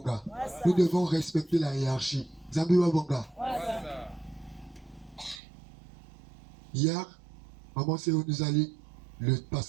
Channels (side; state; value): left; drops out; at 5.4 s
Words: Nous devons respecter la hiérarchie. Zambi Wabonga. Hier, Maman Séo nous a lu le